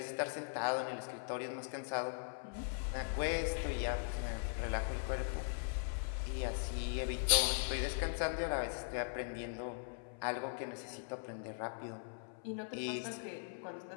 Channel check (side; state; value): right; silent; 51 dB below the other